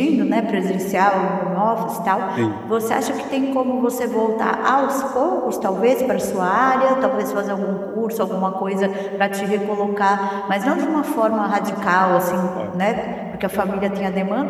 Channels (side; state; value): both; identical; correlation 1.00